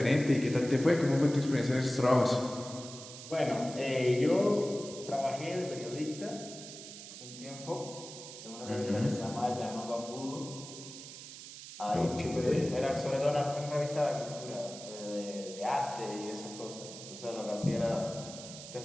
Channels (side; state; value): right; noise; hiss, 13 dB below the sound